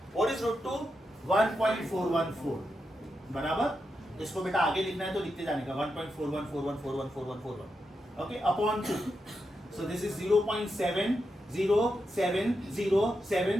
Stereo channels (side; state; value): both; normal; correlation 0.86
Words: What is √2? 1.414. बराबर. इसको बेटा आगे लिखना है तो लिखते जाने का 1.4141414141. Okay upon 2. So this is